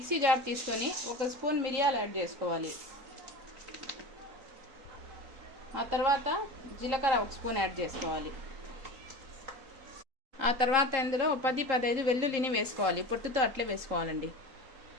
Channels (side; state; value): left; late; 3.8 ms